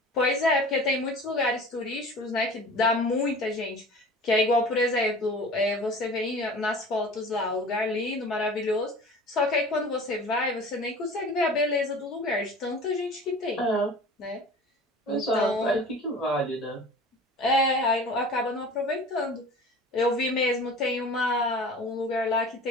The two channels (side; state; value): both; normal; correlation 0.41